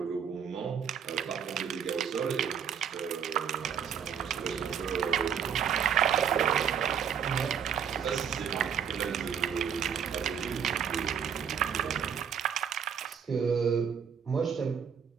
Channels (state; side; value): quieter; left; 7.8 dB